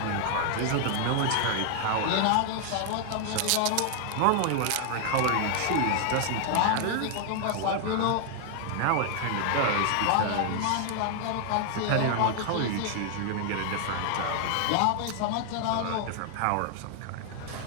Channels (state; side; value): different; both; correlation 0.00